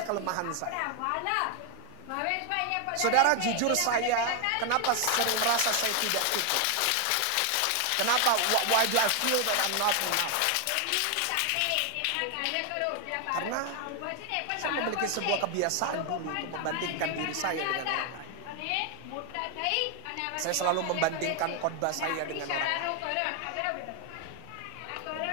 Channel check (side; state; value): both; different; correlation 0.01